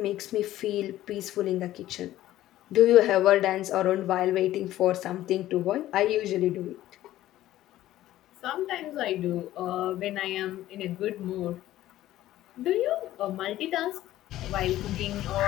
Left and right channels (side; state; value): right; quieter; 14.3 dB